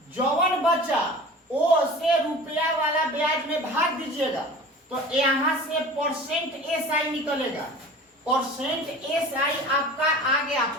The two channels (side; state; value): both; normal; correlation 0.39